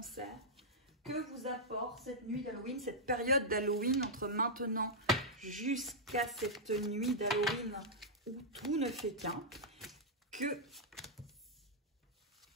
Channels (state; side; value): normal; both; correlation -0.08